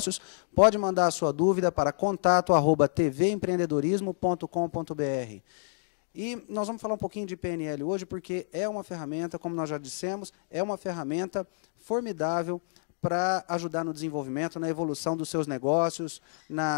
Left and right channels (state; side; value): silent; right; digital silence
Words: pode mandar a sua dúvida para contato@tvempreendedorismo.com.br. E nós vamos falar um pouquinho de PNL hoje, porque é uma ferramenta, como nós já dissemos, é uma ferramenta formidável para ajudar no desenvolvimento, na evolução dos seus negócios,